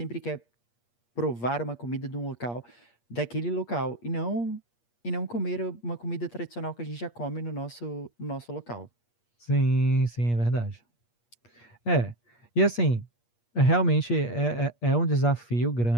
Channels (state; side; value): late; right; 8.5 ms